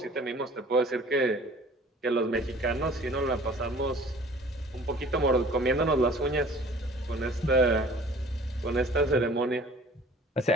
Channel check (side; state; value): both; normal; correlation 0.49